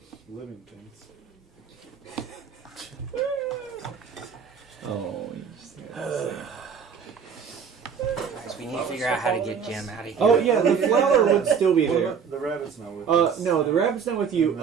living things. Oh, you just Guys, we need to figure out how to get Jim out of here. Oh yeah, the flower would still be there. The rabbit's not with us. No, the rabbit's not with you. And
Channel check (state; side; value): quieter; left; 6.7 dB